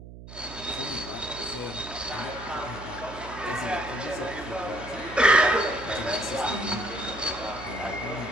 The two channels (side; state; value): right; noise; hum, 14 dB below the sound